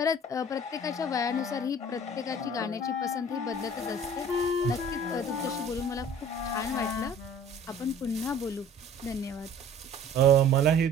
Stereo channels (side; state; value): both; normal; correlation 0.48